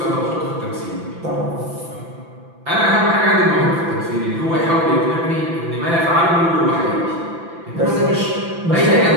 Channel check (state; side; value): late; left; 5.9 ms